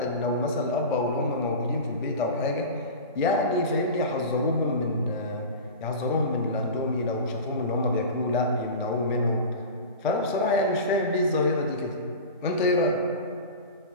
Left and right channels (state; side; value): inverted; both; correlation -0.30